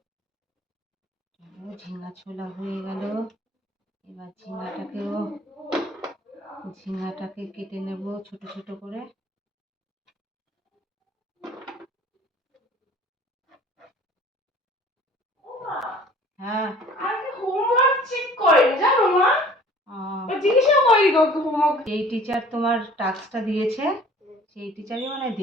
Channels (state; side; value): normal; both; correlation 0.49